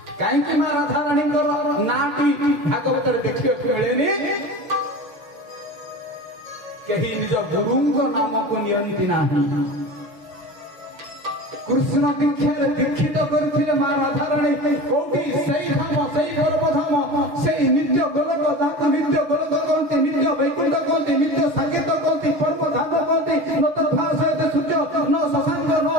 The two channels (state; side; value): late; left; 6.5 ms